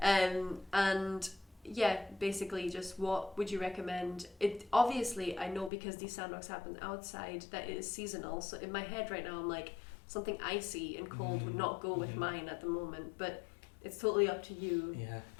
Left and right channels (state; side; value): drops out; right; at 5.7 s